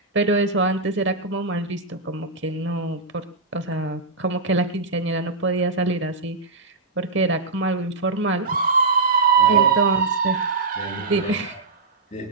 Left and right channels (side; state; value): left; quieter; 3.7 dB